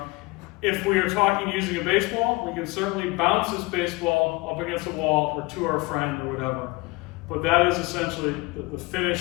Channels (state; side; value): quieter; right; 23.6 dB